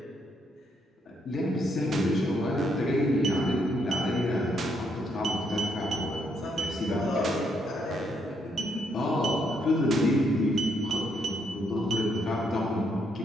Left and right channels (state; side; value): normal; both; correlation 0.75